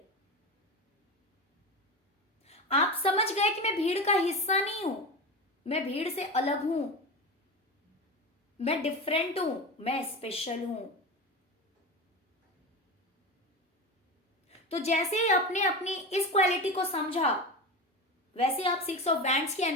आप समझ गए कि मैं भीड़ का हिस्सा नहीं हूं, मैं भीड़ से अलग हूं, मैं डिफरेंट हूं, मैं स्पेशल हूं। तो जैसे ही आपने अपनी इस क्वालिटी को समझा, वैसे आप 6 ऑफ वैंड्स की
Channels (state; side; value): normal; both; correlation 0.24